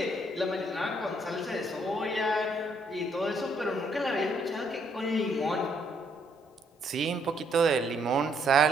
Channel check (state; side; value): normal; both; correlation 0.70